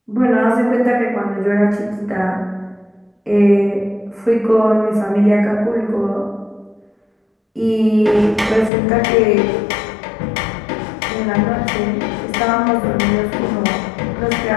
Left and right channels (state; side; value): drops out; right; at 8.7 s